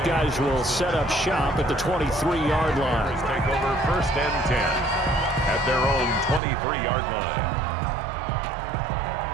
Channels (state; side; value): drops out; left; at 6.4 s